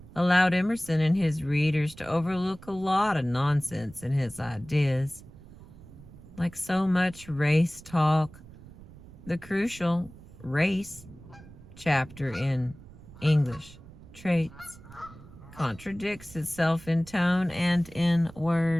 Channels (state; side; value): noise; right; rumble, 19 dB below the sound